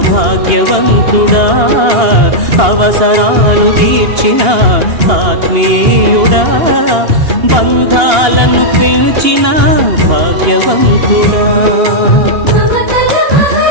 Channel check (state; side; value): late; left; 2.8 ms